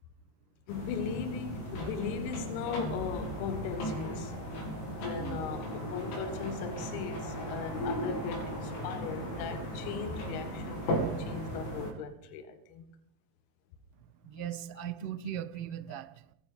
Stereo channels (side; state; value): right; late; 19 ms